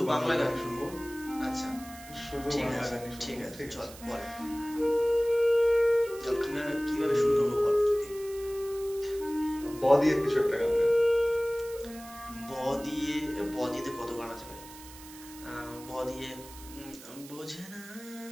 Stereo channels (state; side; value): noise; right; hiss, 17 dB below the sound